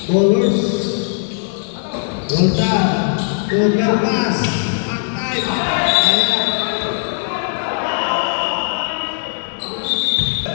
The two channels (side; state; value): right; silent; digital silence